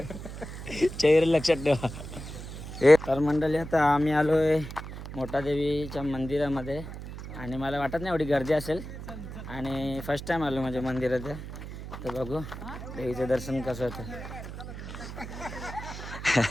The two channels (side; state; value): right; noise; hum, 10 dB below the sound